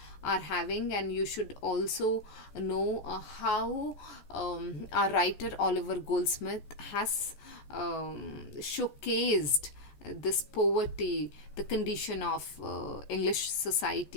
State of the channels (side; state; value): right; late; 14 ms